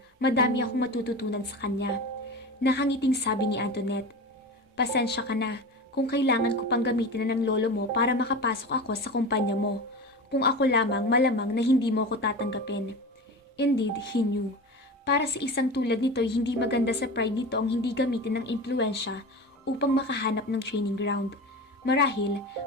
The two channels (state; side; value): normal; both; correlation 0.29